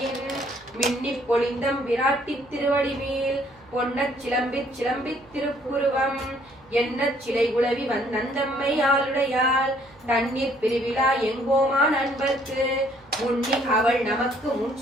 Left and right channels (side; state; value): right; noise; hum, 27 dB below the sound